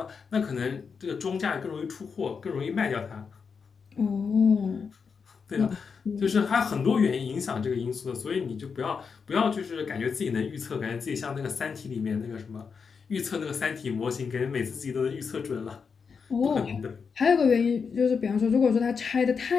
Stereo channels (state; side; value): quieter; right; 5.7 dB